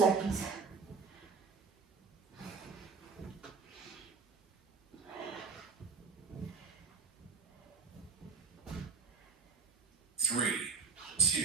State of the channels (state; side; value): quieter; left; 4.9 dB